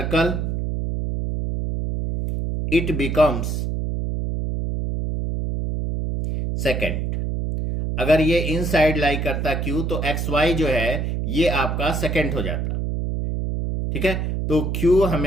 it becomes second. अगर ये इनसाइड लाई करता Q तो XY जो है ये आपका सेकेंड हो जाता। ठीक है, तो Q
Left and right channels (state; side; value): noise; right; hum, 1 dB below the sound